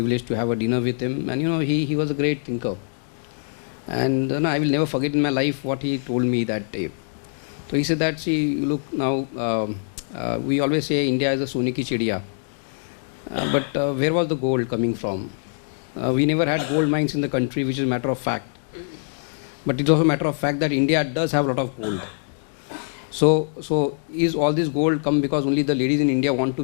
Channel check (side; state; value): right; silent; digital silence